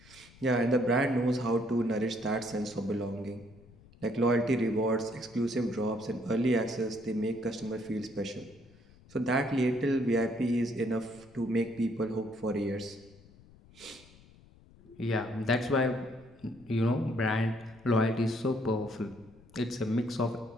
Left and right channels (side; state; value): left; noise; rumble, 25 dB below the sound